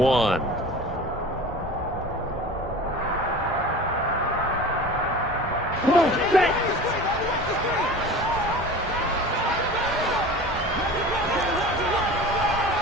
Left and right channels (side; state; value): both; normal; correlation 0.36